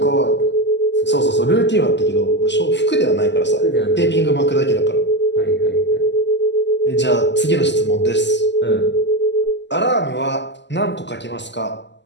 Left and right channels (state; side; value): late; right; 0.51 ms